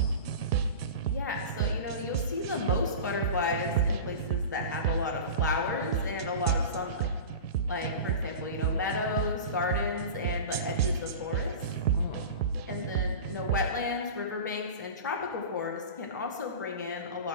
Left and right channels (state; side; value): inverted; both; correlation -0.31